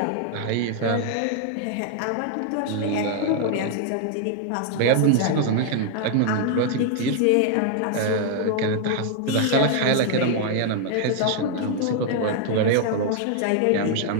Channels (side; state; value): both; different; correlation 0.00